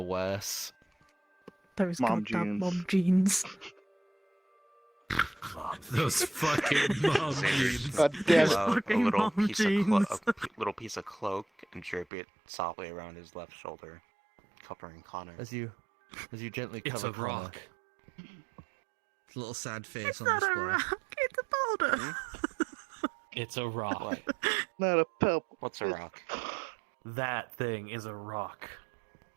Those Mom goddamn jeans. mom jeans. Those fucking mom jeans. God damn it. Pull out a fucking little mom piece of jeans. little piece of cloak and drape it softly around his left shoulder, covering Connor. As you gently It's cover a Connor. rock. A little sad face It's on not display. a rock. It's a boulder. It's a rock. What? Not a pebble. What's a rock? That thing is a rock.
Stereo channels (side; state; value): left; drops out; at 12.1 s